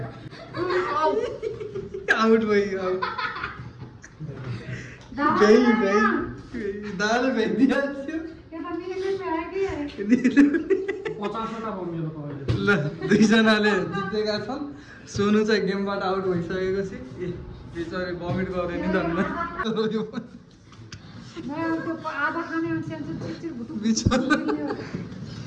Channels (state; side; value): identical; both; correlation 1.00